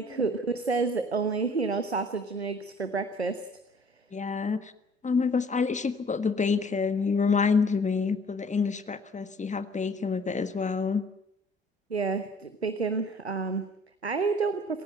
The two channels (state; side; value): normal; both; correlation 0.54